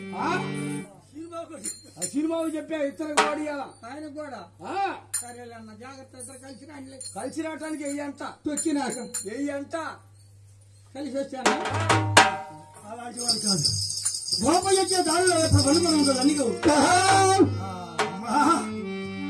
ఆ సినిమాకు చెప్పా ఇతరకు వాడియాలా ఆయన కూడా ఆ, సరేలే అన్న, జాగ్రత్త. ఇద్దరు కలిసి రండి. కలిసి రావటానికి వెయ్యి అంట. తొక్కినాక వెయ్యి అంట. కలిసి వచ్చాను. అలాంటి వాడు కాదు. గోపయ్య వచ్చే దారిలో ఇప్పుడు వలుపురం ఉంటుంది అన్నిగో.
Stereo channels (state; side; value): identical; both; correlation 1.00